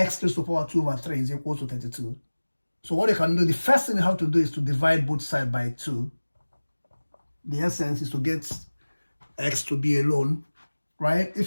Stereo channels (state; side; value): inverted; both; correlation -1.00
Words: to the power 2 over 3 is equal to 32. So what you can do, the first thing you have to do is to divide both sides by 2. The essence is to get x to be alone, right?